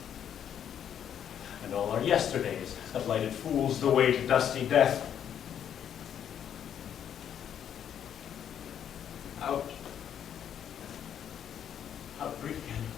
And all our yesterdays have lighted fools the way to dusty death. Out. Out brief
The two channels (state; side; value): quieter; right; 9.2 dB